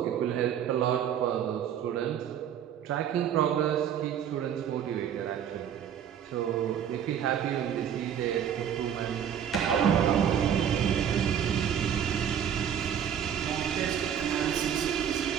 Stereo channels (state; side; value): quieter; left; 8.9 dB